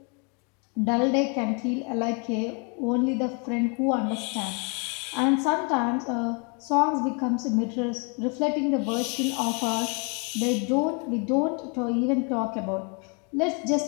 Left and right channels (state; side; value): quieter; right; 35.4 dB